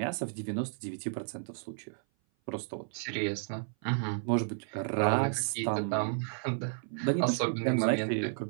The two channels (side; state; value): left; silent; 56 dB below the other